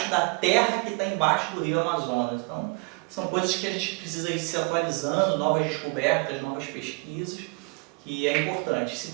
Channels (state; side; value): quieter; left; 34.3 dB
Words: da terra que está embaixo do Rio Amazonas. Então, são coisas que a gente precisa ir se atualizando, novas descobertas, novas pesquisas, que é importante. Se